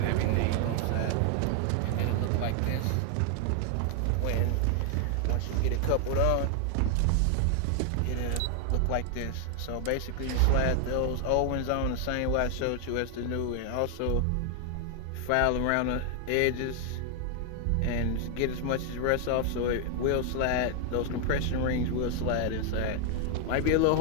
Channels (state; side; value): different; both; correlation 0.00